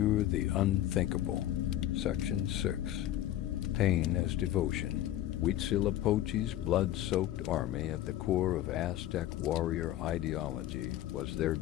the unthinkable. Section 6. Pain as devotion. Huitzilopochtli's blood-soaked army, at the core of Aztec warrior ideology, was their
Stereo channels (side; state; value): right; quieter; 13.2 dB